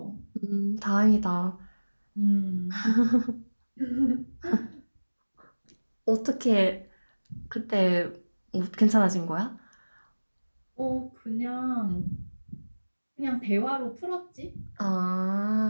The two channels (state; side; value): inverted; both; correlation -1.00